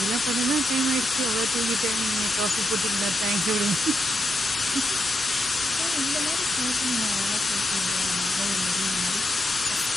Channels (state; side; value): normal; both; correlation 0.83